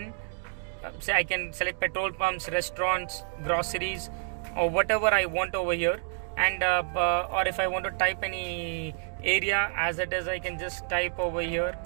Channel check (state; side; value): silent; left; digital silence